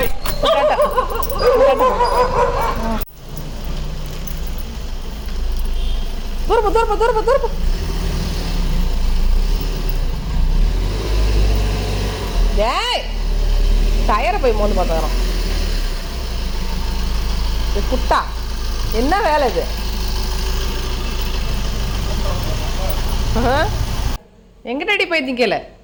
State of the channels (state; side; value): identical; both; correlation 1.00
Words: தூரப்பா. ஏய் டயரை போய் மோந்து பார்த்துக்கிறோம். குட்டா என்ன வேலை இது? எங்கிட்டடி போயிருந்தீங்க கேளு.